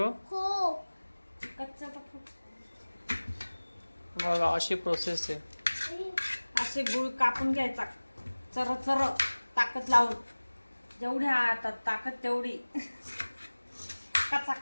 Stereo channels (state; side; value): inverted; both; correlation -1.00